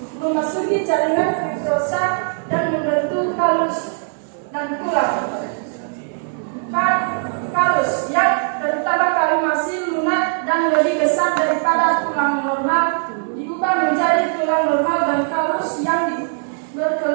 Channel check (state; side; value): silent; left; digital silence